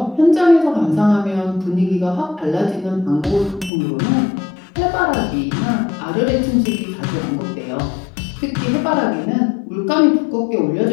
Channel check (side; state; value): right; drops out; at 3.7 s